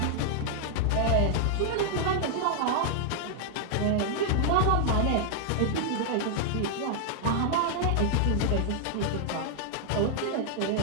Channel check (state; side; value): different; both; correlation 0.00